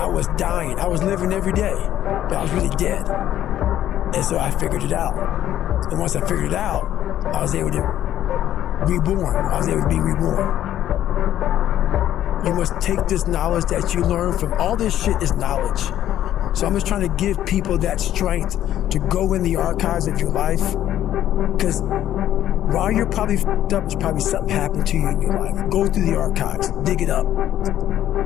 was dying. I was living every day, but I was really dead. And so I figured it out. And once I figured it out, I was able to reborn. I was able to be reborn. You must take this knowledge that you learn from all this shit is knowledge. So I'm just trying to give people that strength to go in the archives of your life. Because while you're probably f***ed up, there's probably something happened to you in your life. Go through the archives, dig it up,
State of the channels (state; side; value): quieter; right; 12.0 dB